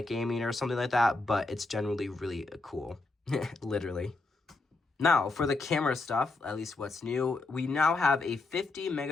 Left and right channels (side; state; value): right; quieter; 3.4 dB